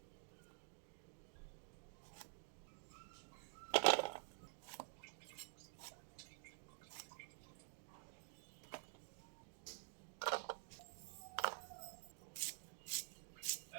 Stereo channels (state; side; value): silent; left; digital silence